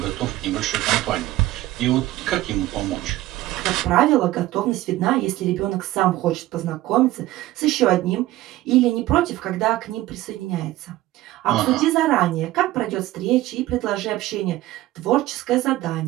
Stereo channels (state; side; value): quieter; left; 16.3 dB